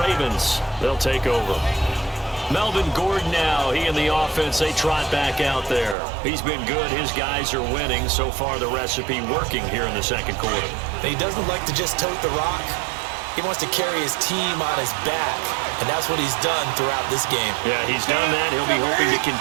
Ravens, they'll take over. Melvin Gordon now, he and the offense, they trot back out there. He's been good. His guys are winning. So far, the recipe working here in the 2nd quarter. He doesn't like to just tote the rock. He wants to carry his team on his back, and that's what he's done throughout this game. Yeah, he's done that. He'll be hoping to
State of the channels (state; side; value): drops out; left; at 6.0 s